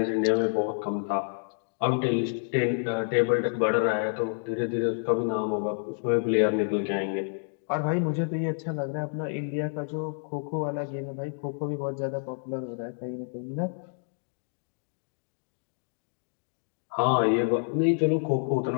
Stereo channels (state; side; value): silent; right; digital silence